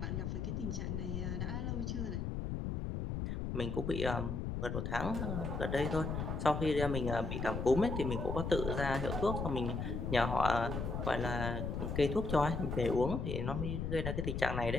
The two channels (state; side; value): noise; left; rumble, 2 dB below the sound